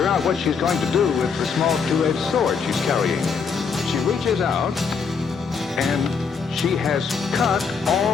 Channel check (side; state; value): right; quieter; 5.8 dB